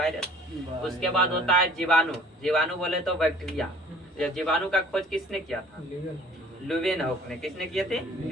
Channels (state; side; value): normal; both; correlation 0.52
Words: उसके बाद होता है जीवाणु, जीवाणु बोले तो बैक्टीरिया। जीवाणु का खोज किसने किया था, लुवेनहॉक ने, किसने किए थे?